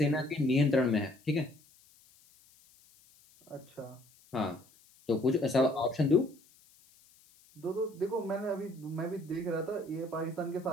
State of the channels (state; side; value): noise; left; hiss, 28 dB below the sound